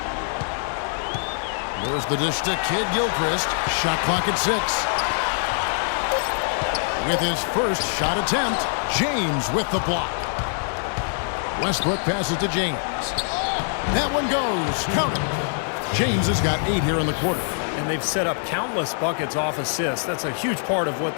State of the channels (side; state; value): right; silent; digital silence